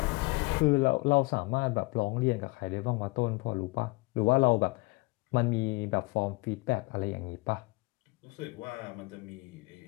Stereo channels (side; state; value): right; quieter; 24.7 dB